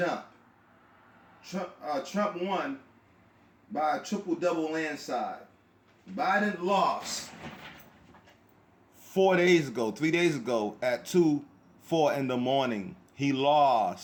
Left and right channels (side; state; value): both; identical; correlation 1.00